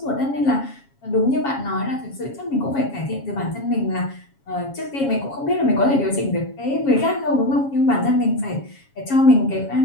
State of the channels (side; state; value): right; late; 7.3 ms